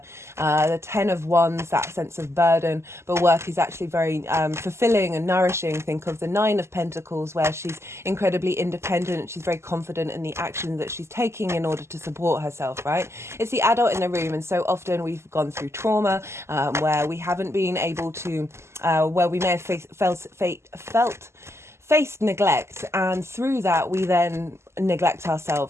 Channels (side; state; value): left; late; 0.13 ms